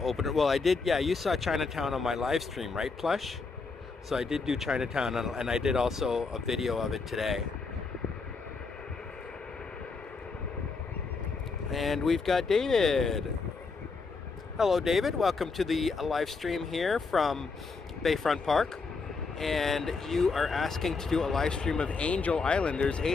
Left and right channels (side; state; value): right; quieter; 4.4 dB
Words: Well, I did, yeah, you saw Chinatown on my live stream, right, Plush? So I did do Chinatown, and I did also a video of it today. And we've got David. Hello, David. Welcome to the live stream here from Bayfront Park. And you are asking to do a live stream of Angel Island. There's